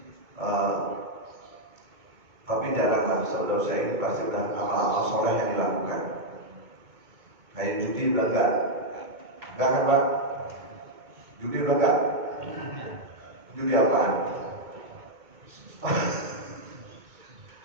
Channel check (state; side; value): late; left; 2.2 ms